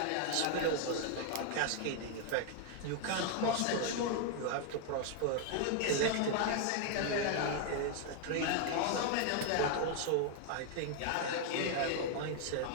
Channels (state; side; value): different; both; correlation 0.00